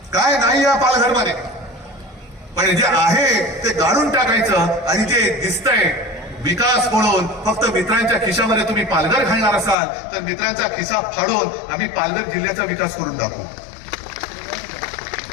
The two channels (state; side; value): drops out; right; at 9.8 s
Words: काय नाही या पालघरमध्ये. पण जे आहे ते गाडून टाकायचं आणि जे दिसतंय विकास म्हणून फक्त मित्रांच्या खिशामध्ये तुम्ही पालघर घालणार असाल तर मित्रांचा खिसा फाडून आम्ही पालघर जिल्ह्याचा विकास करून दाखवू.